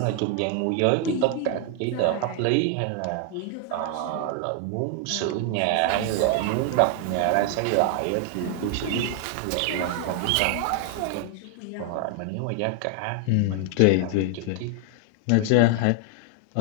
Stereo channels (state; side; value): different; both; correlation 0.00